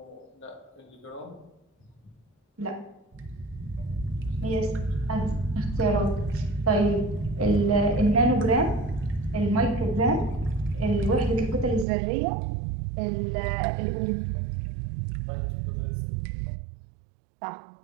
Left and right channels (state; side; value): drops out; left; at 11.9 s